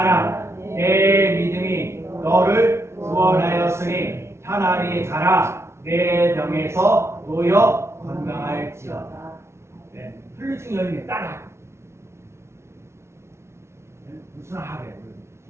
내 믿음이 너를 구원하였으니 차라리 가라 내 병에서 놓여 건강할지어다. 네, 혈류증 여인이 따라 무슨 하래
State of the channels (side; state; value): left; late; 0.13 ms